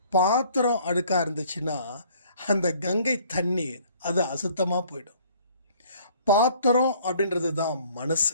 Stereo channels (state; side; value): inverted; both; correlation -0.56